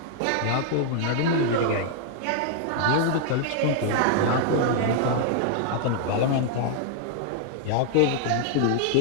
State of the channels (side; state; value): both; different; correlation -0.01